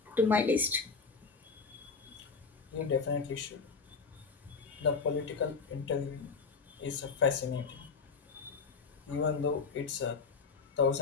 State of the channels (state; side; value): quieter; right; 4.9 dB